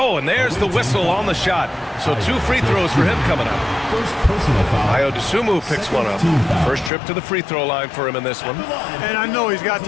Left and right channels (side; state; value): right; drops out; at 6.9 s